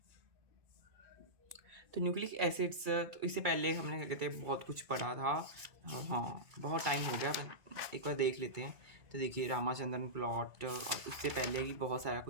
तो न्यूक्लिक एसिड्स, तो इससे पहले हमने क्या कहते हैं बहुत कुछ पढ़ा था। हाँ, बहुत टाइम हो गया, पर एक बार देख लेते हैं। तो देखिए, रामाचंद्रन प्लॉट और उससे पहले ही बहुत सारा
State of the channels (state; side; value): late; left; 2.3 ms